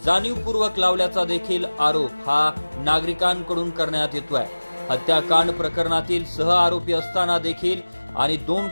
जाणीवपूर्वक लावल्याचा देखील आरोप हा नागरिकांकडून करण्यात येतोय। हत्याकांड प्रकरणातील सह आरोपी असताना देखील आणि 2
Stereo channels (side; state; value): both; inverted; correlation -1.00